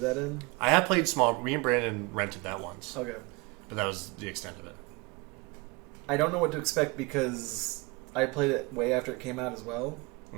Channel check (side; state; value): left; quieter; 25.9 dB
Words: that in. I have played Small. Me and Brandon rented that once, Okay. but that was the extent of it. I don't know what to expect because I played it way after it came out as well.